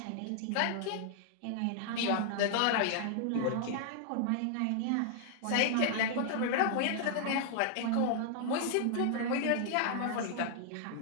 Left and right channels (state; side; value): different; both; correlation 0.00